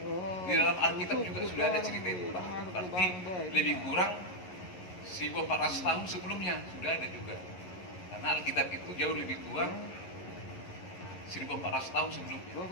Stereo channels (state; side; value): late; right; 11 ms